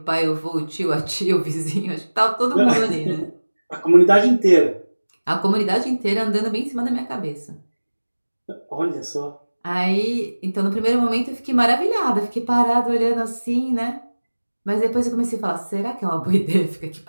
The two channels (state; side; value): inverted; both; correlation -1.00